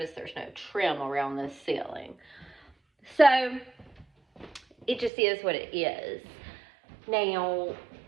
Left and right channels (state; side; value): drops out; left; at 5.1 s